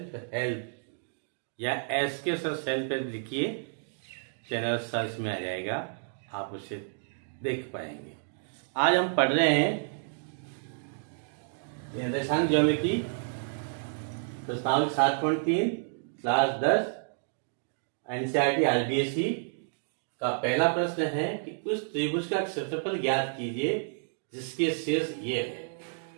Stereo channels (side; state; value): left; silent; digital silence